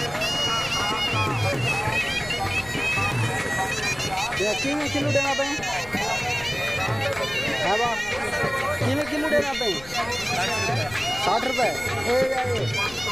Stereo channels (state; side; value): noise; left; rumble, 18 dB below the sound